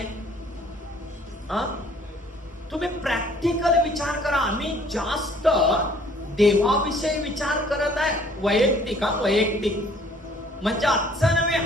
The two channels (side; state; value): both; normal; correlation 0.57